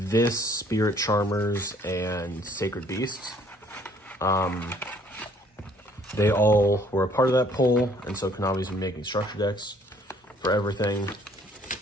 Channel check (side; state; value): both; normal; correlation 0.60